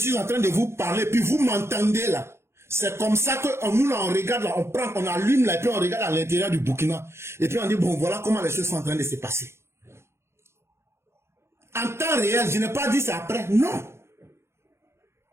en train de vous parler, puis vous m'entendez là. C'est comme ça que nous là, on regarde là, on prend, on allume là, et puis on regarde à l'intérieur du Burkina. Et puis on dit, bon, voilà comment les choses sont en train de se passer. En temps réel, je n'ai pas dit ça après, non.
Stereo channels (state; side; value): late; left; 0.13 ms